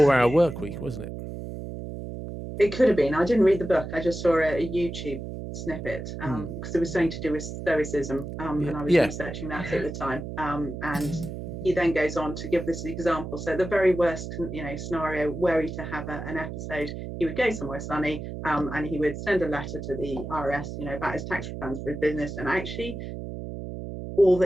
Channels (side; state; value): right; noise; hum, 8 dB below the sound